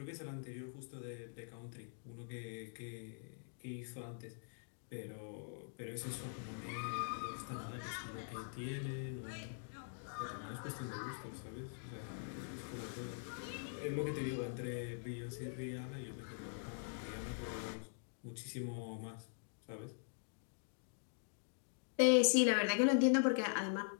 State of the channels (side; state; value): right; silent; digital silence